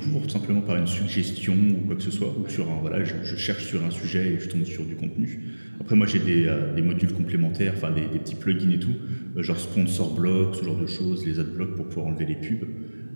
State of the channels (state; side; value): inverted; both; correlation -1.00